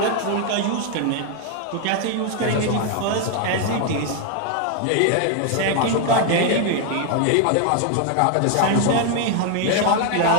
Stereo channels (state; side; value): different; both; correlation 0.00